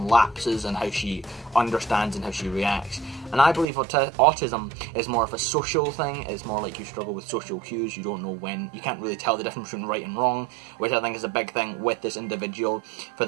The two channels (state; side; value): drops out; left; at 3.7 s